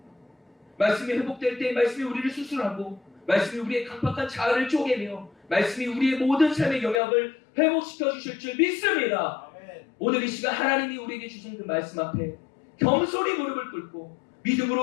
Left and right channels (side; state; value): right; drops out; at 7.0 s